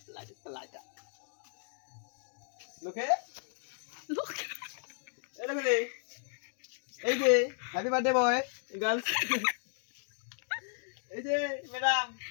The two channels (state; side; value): silent; right; 55 dB below the other